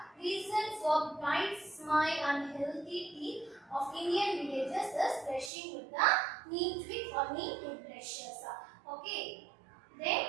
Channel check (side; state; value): left; drops out; at 5.5 s